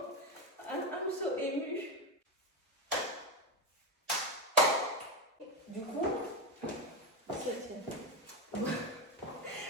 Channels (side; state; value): both; normal; correlation 0.11